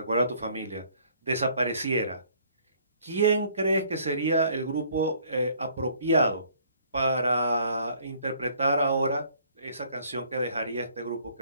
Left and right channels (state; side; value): inverted; both; correlation -0.60